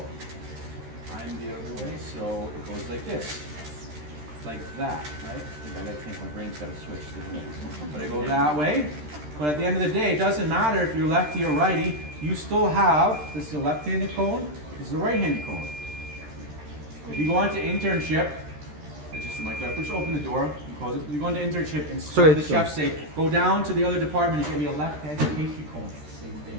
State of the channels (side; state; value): left; late; 13 ms